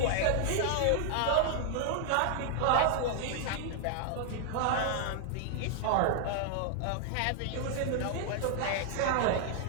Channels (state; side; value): different; both; correlation 0.00